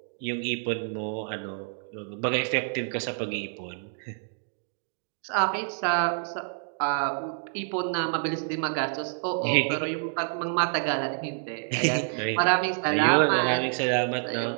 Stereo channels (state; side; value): silent; left; digital silence